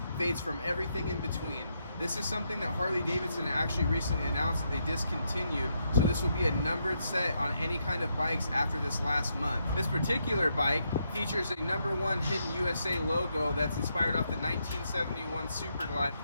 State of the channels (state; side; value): inverted; both; correlation -0.79